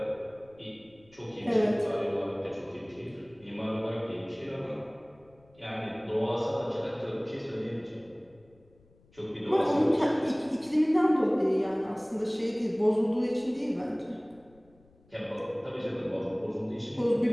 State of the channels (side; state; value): left; noise; rumble, 30 dB below the sound